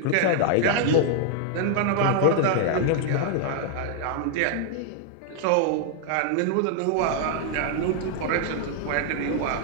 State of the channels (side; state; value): both; different; correlation 0.00